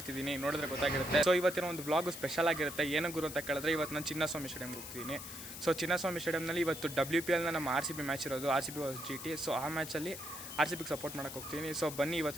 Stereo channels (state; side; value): noise; left; hiss, 10 dB below the sound